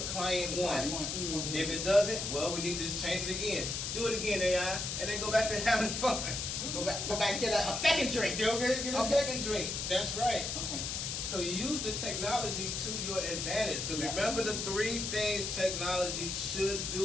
client wants? Okay. If it doesn't, well, we need to just change it again. Do it again, AI, and then go back to having fun. Go back and get a second drink. Go get a Okay. second drink. That's right. Okay. So you use the technology to your advantage. Because Yeah. remember the 3 things technology should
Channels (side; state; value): left; noise; hiss, 3 dB below the sound